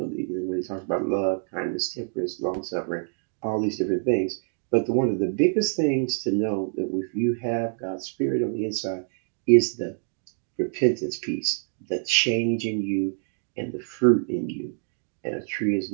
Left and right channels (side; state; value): left; silent; digital silence